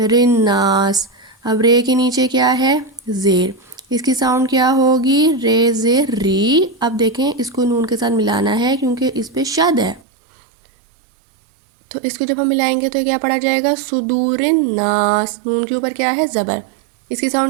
الناس. اب رے کے نیچے کیا ہے؟ زیر، اس کی ساؤنڈ کیا ہوگی؟ رے زیر ری. اب دیکھیں اس کو نون کے ساتھ ملانا ہے کیونکہ اس پہ شد ہے تو اس کو جب ہم ملائیں گے تو کیا پڑھا جائے گا؟ صدور الناس. نون کے اوپر کیا ہے؟ زبر، اس کی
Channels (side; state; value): left; drops out; at 10.0 s